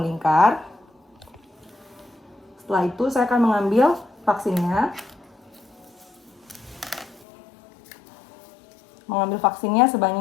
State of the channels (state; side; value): drops out; right; at 7.2 s